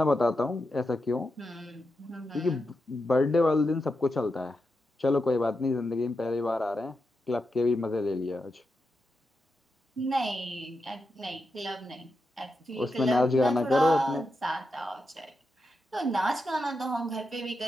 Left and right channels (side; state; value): both; normal; correlation 0.87